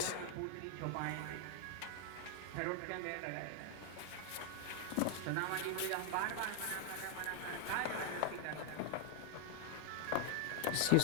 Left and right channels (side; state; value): both; different; correlation 0.00